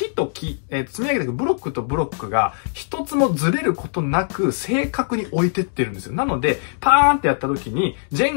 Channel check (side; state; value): right; silent; digital silence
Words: と木、積み上げていくブロックとブロックが一つもずれることなく正確に置いてってるんですよ。なので、パーンってやった時に、ジェ